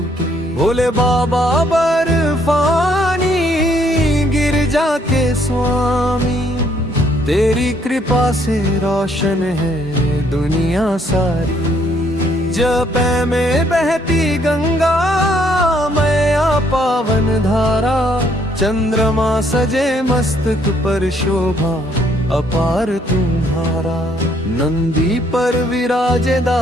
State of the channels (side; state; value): both; normal; correlation 0.67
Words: भोले बाबा बर्फानी गिरजा के स्वामी, तेरी कृपा से रोशन है दुनिया सारी। जपै में बहती गंगा मैया पावन धारा, चंद्रमा सजे मस्तक पर शोभा अपार तुम्हारा। नंदी पर विराजे